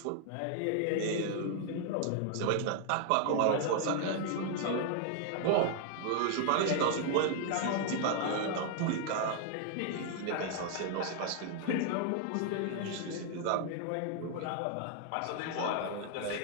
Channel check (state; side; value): different; both; correlation 0.00